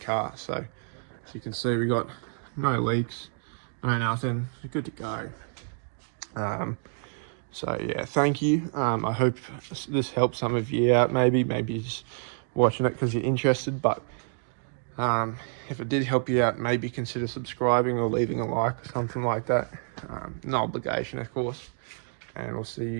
So as you can see, we got no leaks, no nothing, good to go. So yeah, thank you. I hope this helps some of you out. Maybe you're just watching it because you're interested, but if it did help you out, maybe consider subscribing or leaving a like or something like that. No obligation, of course, and we'll see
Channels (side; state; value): left; silent; 59 dB below the other